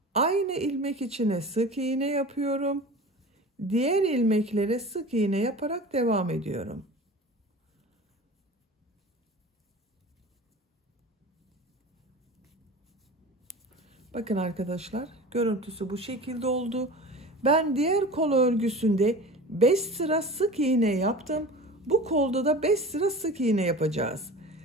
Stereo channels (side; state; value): both; normal; correlation 0.36